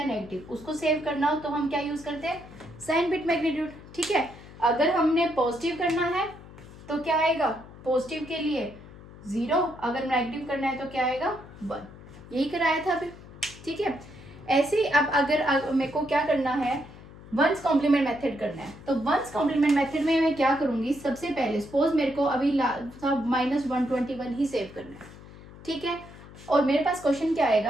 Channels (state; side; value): noise; left; hum, 18 dB below the sound